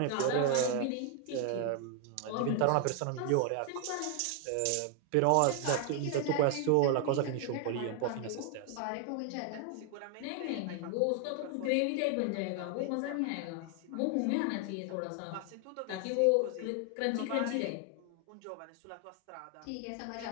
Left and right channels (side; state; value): both; different; correlation 0.00